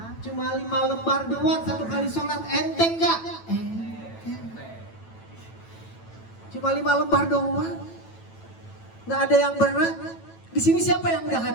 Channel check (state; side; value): late; right; 9.0 ms